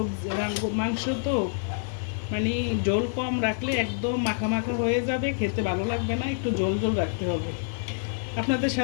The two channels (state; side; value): silent; right; digital silence